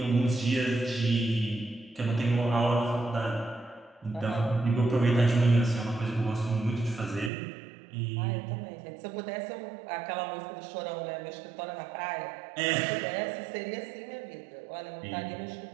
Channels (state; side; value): drops out; left; at 7.3 s